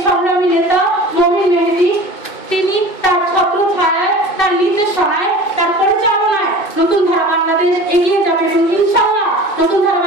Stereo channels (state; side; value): late; right; 2.7 ms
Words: সংগ্রামী নেতা মমিন মেহেদী, তিনি তার ছত্র ছায়ায়, তার নির্দেশনায়, তার পরিচালনায় নতুন ধারা বাংলাদেশ এগিয়ে যাবে এবং ইনশাআল্লাহ নতুন ধারা